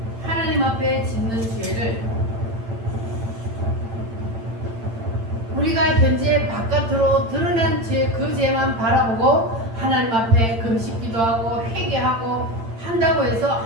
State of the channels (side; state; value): left; late; 8.9 ms